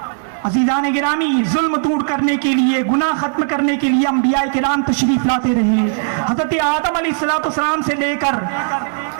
عزیزان گرامی, ظلم دور کرنے کے لیے, گناہ ختم کرنے کے لیے انبیاء کرام تشریف لاتے رہے. حضرت آدم علیہ السلام سے لے کر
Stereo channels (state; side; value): silent; left; 63 dB below the other